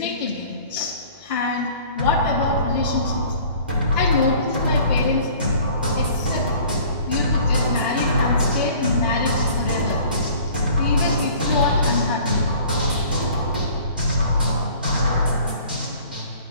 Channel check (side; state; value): both; inverted; correlation -0.50